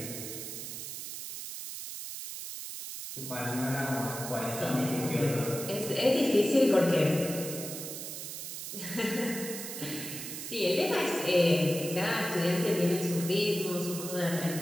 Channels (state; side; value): noise; right; hiss, 8 dB below the sound